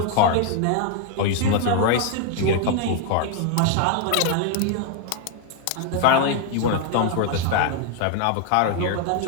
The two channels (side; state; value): both; different; correlation 0.01